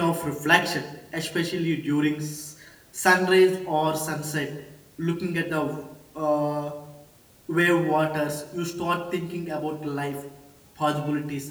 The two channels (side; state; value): both; identical; correlation 1.00